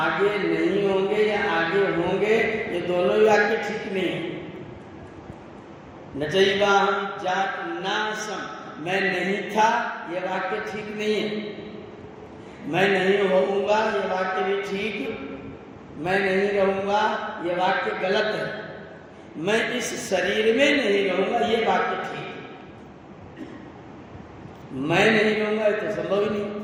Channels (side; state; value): both; identical; correlation 1.00